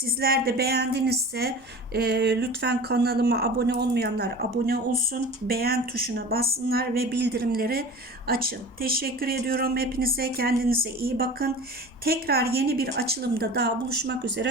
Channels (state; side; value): normal; both; correlation 0.37